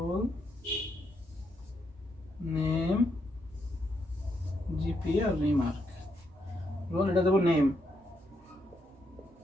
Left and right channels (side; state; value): both; normal; correlation 0.78